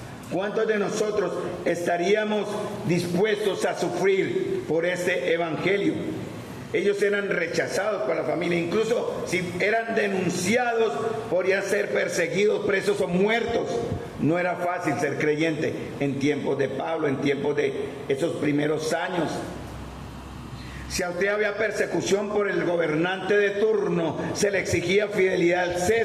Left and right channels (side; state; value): both; identical; correlation 1.00